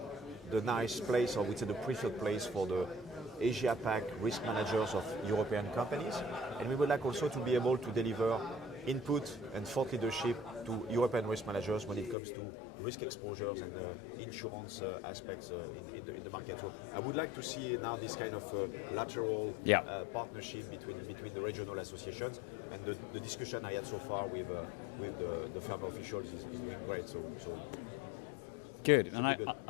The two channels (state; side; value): drops out; right; at 12.2 s